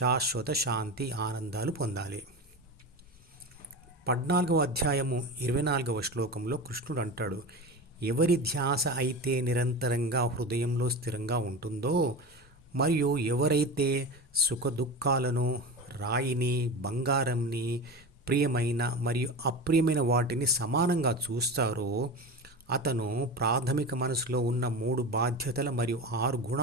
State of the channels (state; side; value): normal; both; correlation 0.26